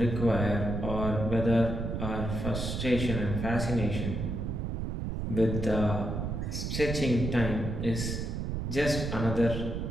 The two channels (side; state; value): right; noise; rumble, 3 dB below the sound